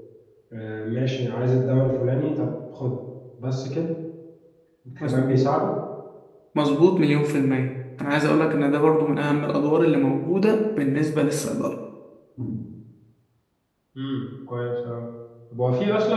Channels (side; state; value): both; identical; correlation 1.00